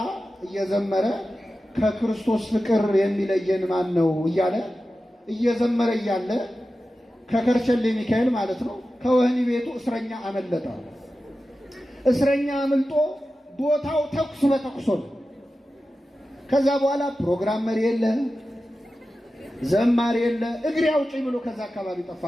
እየዘመረ ከክርስቶስ ፍቅር የሚለየን ማን ነው እያለ እየዘመረ እያለ ከከርቸሌ ሚካኤል ማለት ነው ከወህኒ ቤቱ እስረኛ አመለጠ። እስረኛ አምልጦ ቦታው ተኩስ በተኩስ ነው። ከዛ በኋላ ፕሮግራም መሪ የለ፣ ዘማሪ የለ፣ እግሬ አውጪኝ ብሎ ከዛ አካባቢ ጠፋ።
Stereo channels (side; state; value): both; normal; correlation 0.93